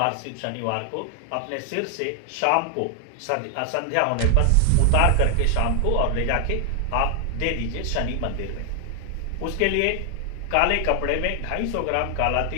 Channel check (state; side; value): different; both; correlation 0.00